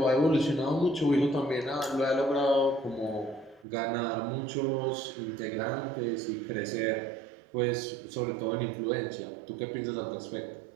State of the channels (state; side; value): drops out; left; at 3.7 s